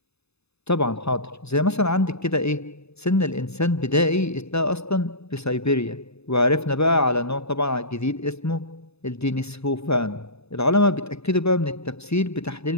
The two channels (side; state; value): right; late; 0.79 ms